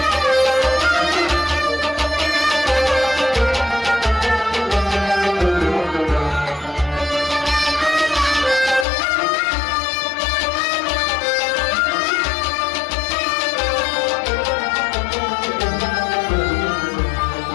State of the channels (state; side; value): drops out; right; at 8.8 s